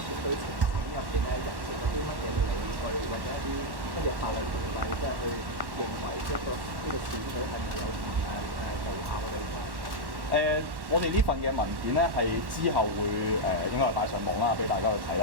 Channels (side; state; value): left; late; 1.1 ms